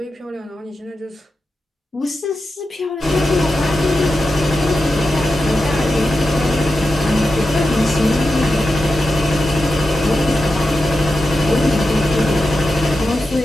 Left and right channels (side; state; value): both; normal; correlation 0.90